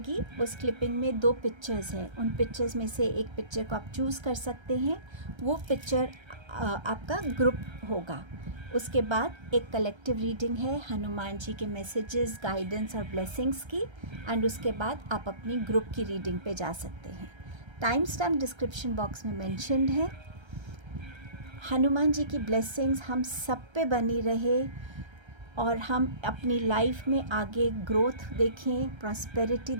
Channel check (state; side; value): late; left; 1.3 ms